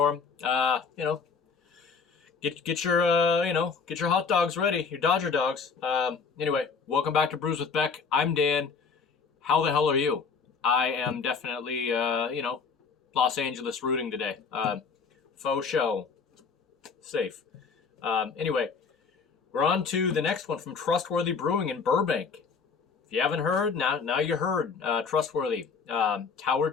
them. Get your get your hot dogs ready, your Dodger dogs. Anyway, welcome back to Brews with Beck. I'm Dan. How the hell are you? I am definitely Los Angeles rooting today. Faux show. Safe. Anyway, we're on to the next one from Trustworthy Brewing in Burbank. If you haven't heard, now you heard. Trustworthy. Tower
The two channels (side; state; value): right; quieter; 5.4 dB